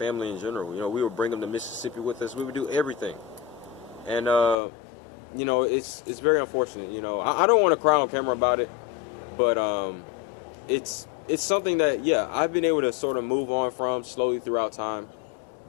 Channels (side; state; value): right; drops out; at 4.5 s